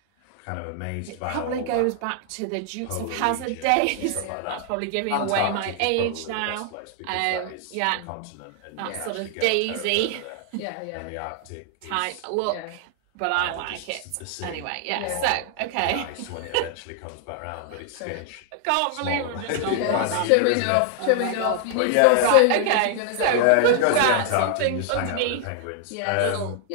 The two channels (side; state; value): both; different; correlation 0.00